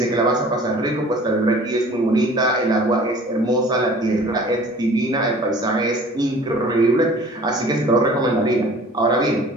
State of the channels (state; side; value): normal; both; correlation 0.47